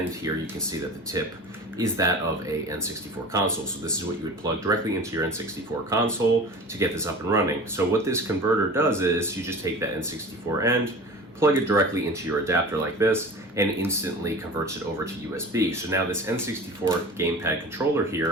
here you can see that the tip is that of a N64 console. So this is what you would plug directly into your N64 console to get this up and running. So what this converter does is you just take that N64 end, plug it directly into your adapter like this, and instantly converts it over to USB. So now this N64 gamepad controller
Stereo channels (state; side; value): normal; both; correlation 0.37